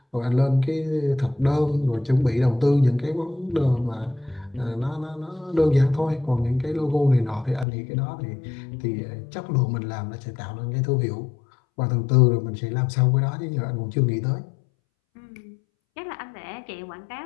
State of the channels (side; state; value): right; drops out; at 7.7 s